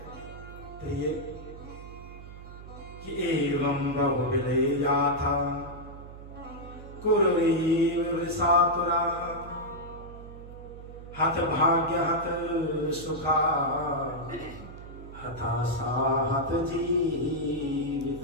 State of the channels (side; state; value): right; noise; hum, 14 dB below the sound